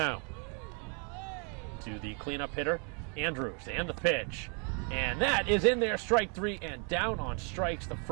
to the cleanup hitter, Andrews, and the pitch. And that is in there, strike 3, and down on strikes, the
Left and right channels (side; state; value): left; quieter; 37.9 dB